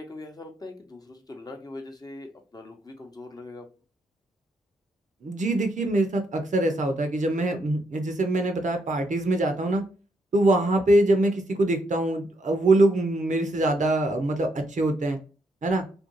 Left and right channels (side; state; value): both; normal; correlation 0.76